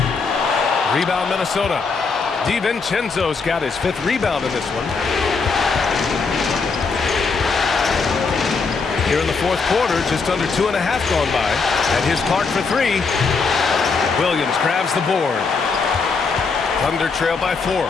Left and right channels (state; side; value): quieter; right; 4.7 dB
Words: Rebound Minnesota. DiVincenzo's got his 5th rebound in this one. Here in the 4th quarter, just under 2.5 gone by. And here's Clark for 3. Williams grabs the board. Thunder trail by 4.